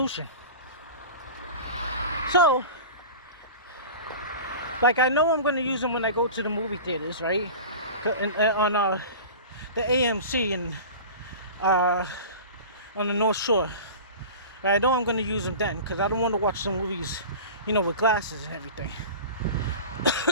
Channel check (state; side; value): inverted; both; correlation -0.35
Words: So, like I know I'm gonna use them when I go to the movie theaters, right? On the AMC and on the North Shore. I know I'm gonna use them then because I don't want to watch some movies, with glasses and everything.